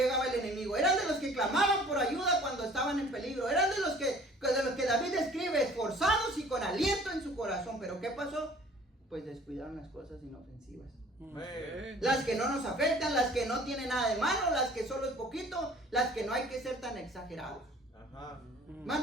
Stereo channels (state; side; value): normal; both; correlation 0.51